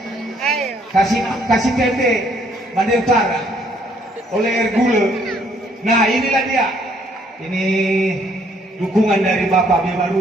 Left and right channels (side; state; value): both; normal; correlation 0.66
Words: kasih PP Mandai Utara oleh Ergule. Nah, inilah dia. Ini dukungan dari Bapak